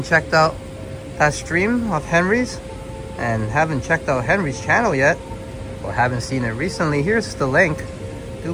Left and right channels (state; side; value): identical; both; correlation 1.00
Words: checked out that stream of Henry's and haven't checked out Henry's channel yet, or haven't seen it recently, here's the link.